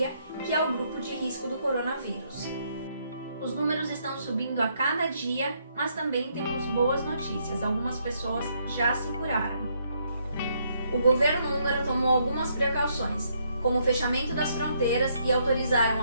que é o grupo de risco do coronavírus. Os números estão subindo a cada dia, mas também temos boas notícias. Algumas pessoas já se curaram. O governo húngaro tomou algumas precauções, como o fechamento das fronteiras e autorizaram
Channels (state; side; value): inverted; both; correlation -0.73